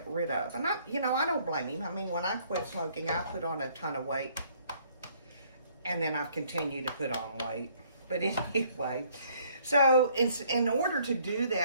rid of. And I don't blame him. I mean, when I quit smoking, I put on a ton of weight. And then I've continued to put on weight. But anyway, so in order to do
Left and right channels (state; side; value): inverted; both; correlation -0.63